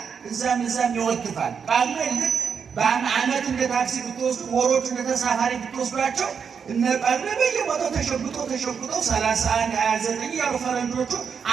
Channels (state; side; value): quieter; left; 6.6 dB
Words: እዛም ይወትፋል። ቃሉን ልክ በአመት እንደ ታክሲ ብትወስዱ ወሮቹ እንደ ተሳፋሪ ብትወስዷቸው እነ ጳጉሜ በየቦታው ተሸጉጠው 31 29 ያሉ ፈረንጆቹ